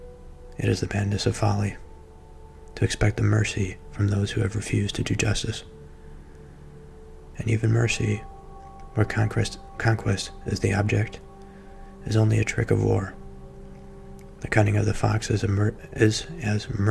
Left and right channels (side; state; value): both; identical; correlation 1.00